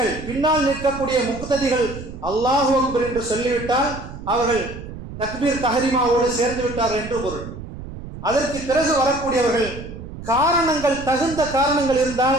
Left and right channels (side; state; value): right; noise; rumble, 12 dB below the sound